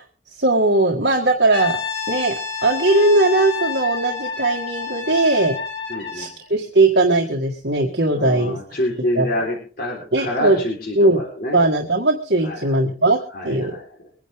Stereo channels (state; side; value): normal; both; correlation -0.08